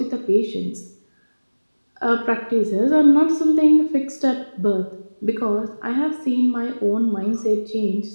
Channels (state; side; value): inverted; both; correlation -1.00